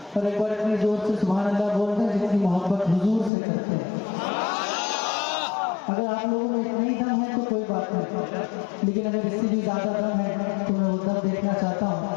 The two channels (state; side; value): drops out; right; at 3.3 s